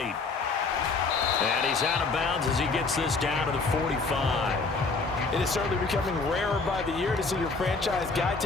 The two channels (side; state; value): right; quieter; 4.1 dB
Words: And he's out of bounds as he gets this down to the 45. It is certainly becoming rarer by the year to see your franchise guy